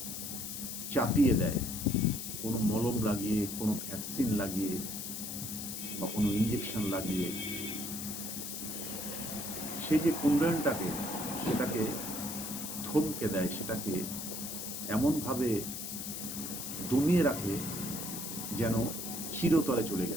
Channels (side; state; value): left; noise; hiss, 6 dB below the sound